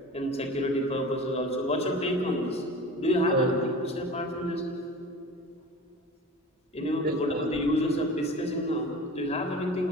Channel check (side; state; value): both; normal; correlation 0.36